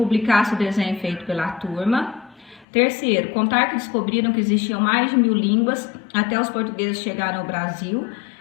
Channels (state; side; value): drops out; right; at 2.7 s